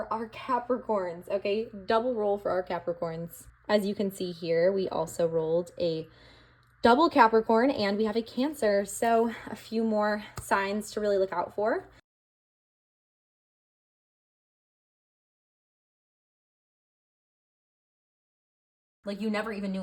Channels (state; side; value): identical; both; correlation 1.00